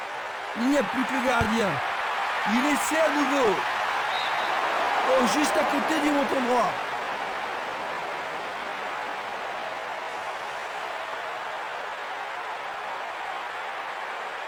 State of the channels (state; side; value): identical; both; correlation 1.00